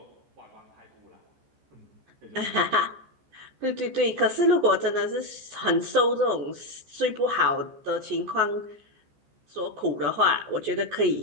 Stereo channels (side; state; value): left; late; 14 ms